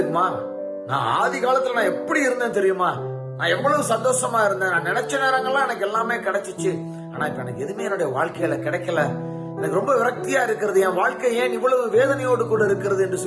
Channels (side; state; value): both; identical; correlation 1.00